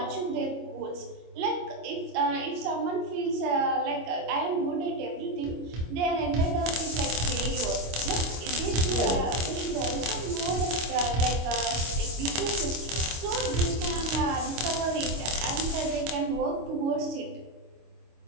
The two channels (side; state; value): left; late; 25 ms